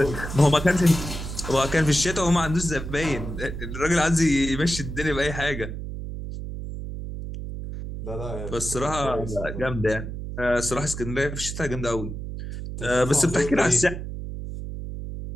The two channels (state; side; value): noise; right; hum, 7 dB below the sound